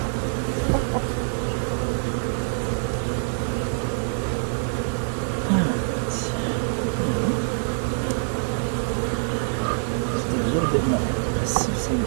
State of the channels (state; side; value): silent; left; 62 dB below the other